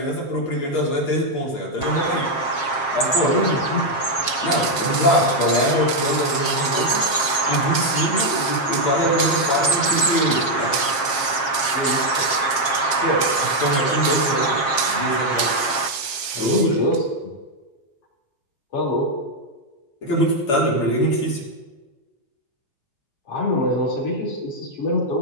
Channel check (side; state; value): right; late; 7.4 ms